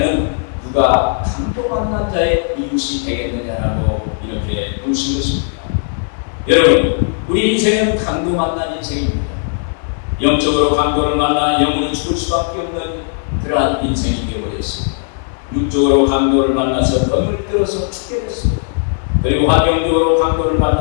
누가 강도 만난 자의 이웃이 되겠느냐라고 이렇게 물으신 것입니다. 여러분, 우리 인생은 강도 만난 인생입니다. 영적으로 강도를 만나 영원히 죽을 수밖에 없는 그러한 인생이 되어버렸습니다. 육적으로 강도를 만나서 덤을 들어서 죽게 됐습니다. 그리고 환경적으로 강도를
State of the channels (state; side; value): silent; right; digital silence